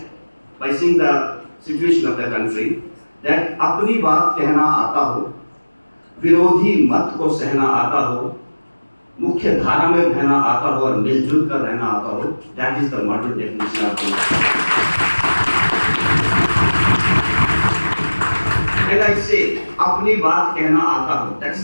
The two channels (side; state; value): both; inverted; correlation -1.00